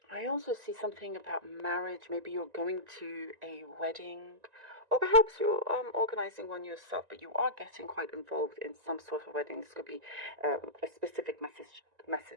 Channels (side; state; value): left; late; 1.9 ms